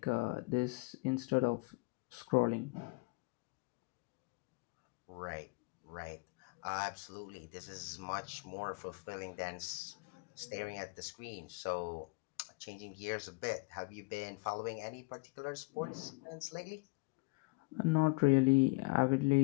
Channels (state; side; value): quieter; right; 26.4 dB